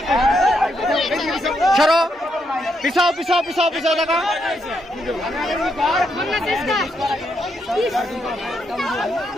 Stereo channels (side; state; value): both; normal; correlation 0.79